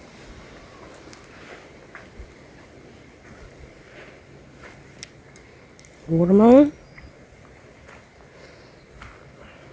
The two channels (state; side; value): identical; both; correlation 1.00